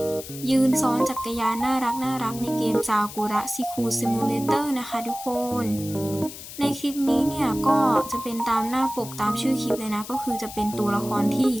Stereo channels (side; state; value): left; noise; hiss, 13 dB below the sound